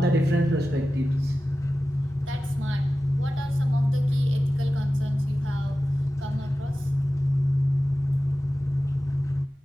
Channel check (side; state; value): both; normal; correlation 0.95